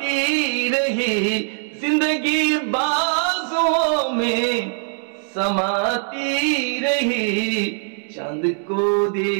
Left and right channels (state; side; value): silent; left; 62 dB below the other